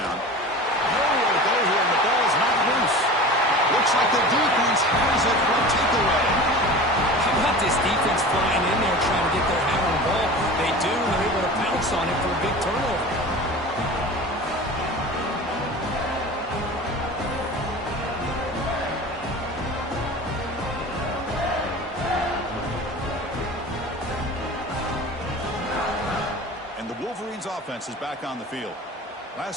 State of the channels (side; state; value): both; normal; correlation 0.35